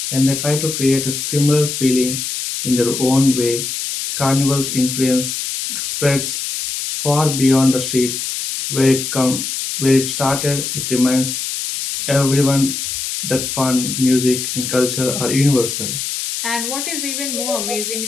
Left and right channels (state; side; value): noise; left; hiss, 4 dB below the sound